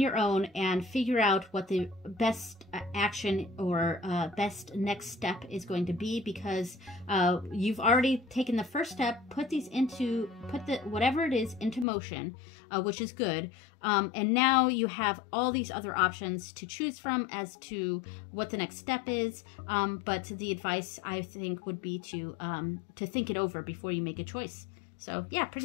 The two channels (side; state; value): right; drops out; at 11.9 s